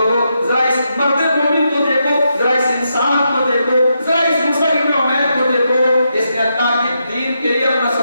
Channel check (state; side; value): inverted; both; correlation -0.83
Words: ذرا اس مرد مومن کو دیکھو، ذرا اس انسان کو دیکھو، ذرا اس مصعب بن عمیر کو دیکھو، اس نے اللہ کے دین کے لیے اپنا